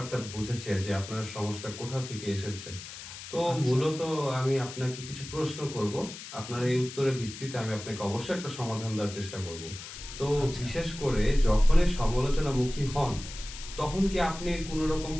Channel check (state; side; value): noise; left; hiss, 12 dB below the sound